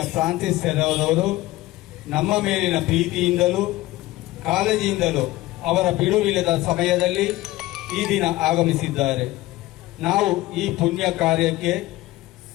ಫ್ರಾನ್ಸಿಸ್ ಸೆರವರು ನಮ್ಮ ಮೇಲಿನ ಪ್ರೀತಿಯಿಂದಲೂ ಕಾಳಜಿಯಿಂದಲೂ ಅವರ ಬಿಡುವಿಲ್ಲದ ಸಮಯದಲ್ಲಿ ಈ ದಿನ ಆಗಮಿಸಿದ್ದಾರೆ. ನಾವು ಈ ಪುಣ್ಯ ಕಾರ್ಯಕ್ಕೆ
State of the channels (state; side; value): quieter; right; 17.5 dB